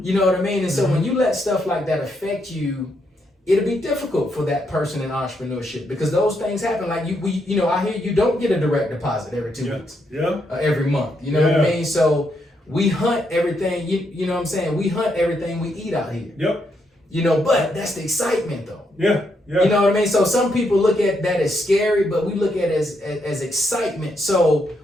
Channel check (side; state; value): both; normal; correlation 0.78